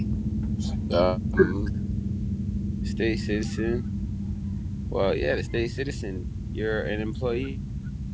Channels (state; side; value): identical; both; correlation 1.00